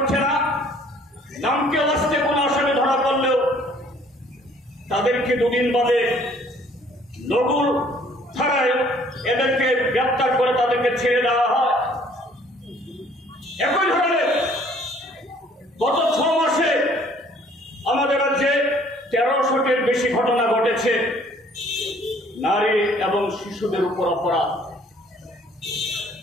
না। নামকে আসতে কোন আসামি ধরা পড়লেও তাদেরকে 2 দিন বাদে লঘু ধারায় এদেরকে গ্রেপ্তার করে তাদেরকে ছেড়ে দেওয়া হয়। একই ধরনের গত 6 মাসে আমাদের রাজ্যে 1300টির বেশি ঘটনা ঘটেছে নারী এবং শিশুদের উপর অপরাধ।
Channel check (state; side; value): normal; both; correlation 0.58